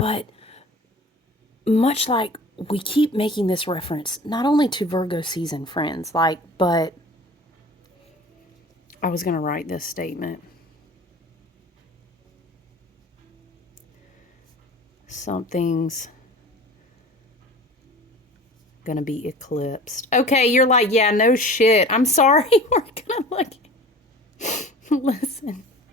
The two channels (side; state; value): both; normal; correlation 0.41